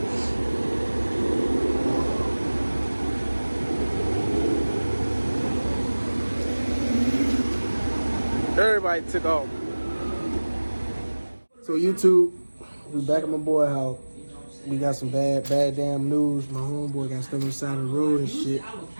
everybody took off. So YouTube, we back at my boy house. We got some bad damn news. My homeboy got stuck on the side of the road and shit.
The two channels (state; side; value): inverted; both; correlation -1.00